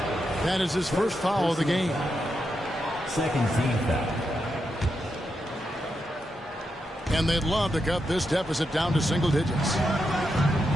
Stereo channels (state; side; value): normal; both; correlation 0.85